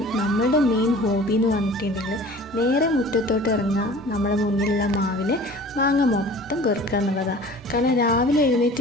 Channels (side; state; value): both; normal; correlation 0.44